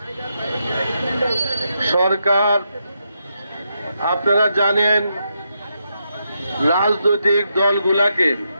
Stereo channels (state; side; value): inverted; both; correlation -0.82